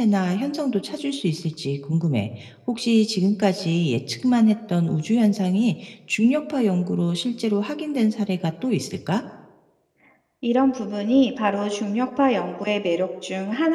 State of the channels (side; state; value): both; identical; correlation 1.00